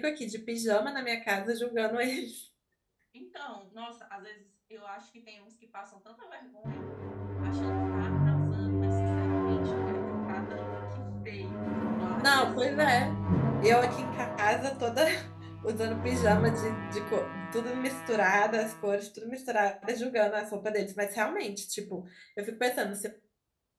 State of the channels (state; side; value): identical; both; correlation 1.00